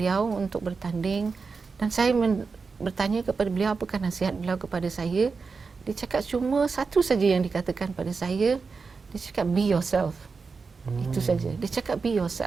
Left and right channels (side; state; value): left; quieter; 4.8 dB